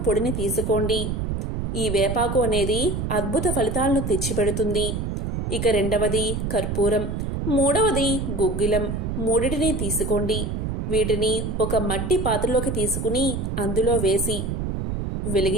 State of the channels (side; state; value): right; noise; rumble, 2 dB below the sound